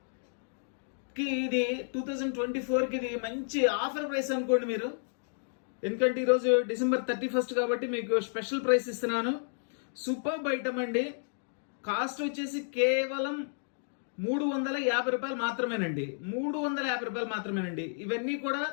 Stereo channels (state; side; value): silent; right; digital silence